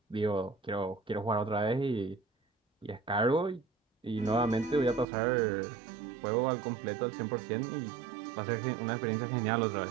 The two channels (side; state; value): left; drops out; at 5.1 s